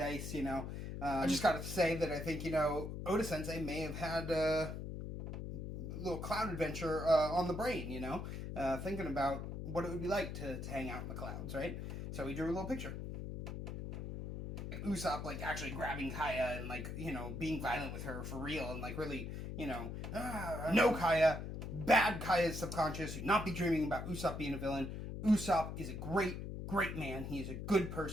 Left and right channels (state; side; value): noise; left; hum, 6 dB below the sound